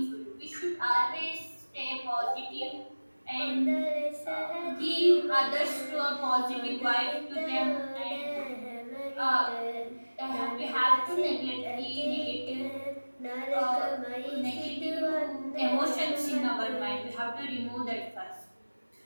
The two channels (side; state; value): both; inverted; correlation -1.00